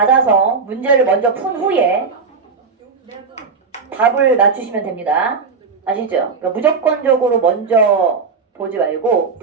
문제를 먼저 푼 후에 답을 맞추시면 됩니다. 아시죠? 그러니까 무조건적으로 먼저 보지 말고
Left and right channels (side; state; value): left; quieter; 5.0 dB